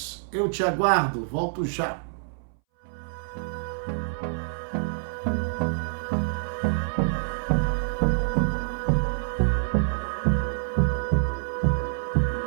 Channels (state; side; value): silent; left; 60 dB below the other